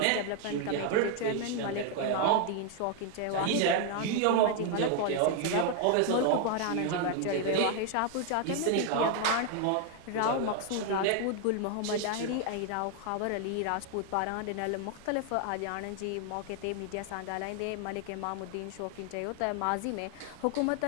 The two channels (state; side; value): different; both; correlation 0.00